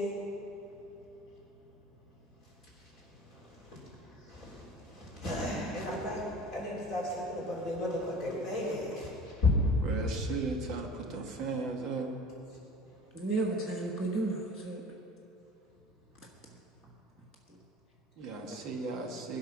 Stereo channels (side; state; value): both; normal; correlation 0.42